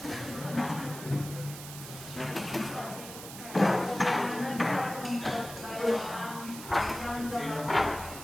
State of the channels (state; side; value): noise; right; hiss, 12 dB below the sound